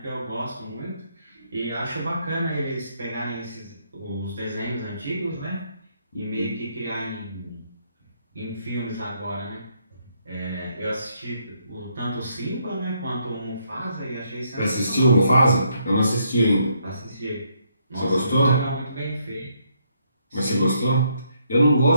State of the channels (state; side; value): inverted; both; correlation -0.73